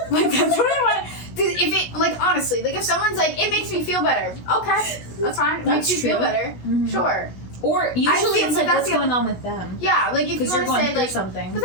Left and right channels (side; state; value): right; late; 17 ms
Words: Like, that's what I want. If it, like, honestly, like, if someone's like, it makes me feel better, okay, that's fine. It makes you feel better, sure. Or usually it's like, what's going on with them? Yeah, like if you want to say like something. But